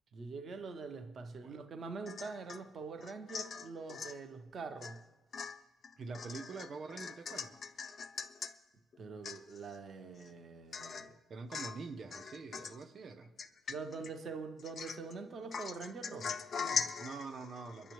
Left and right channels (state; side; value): normal; both; correlation 0.74